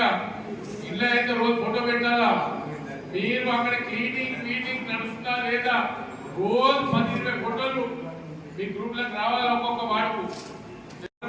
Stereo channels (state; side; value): identical; both; correlation 1.00